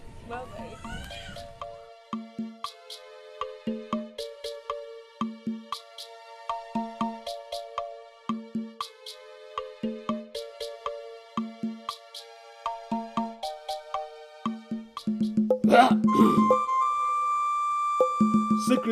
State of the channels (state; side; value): identical; both; correlation 1.00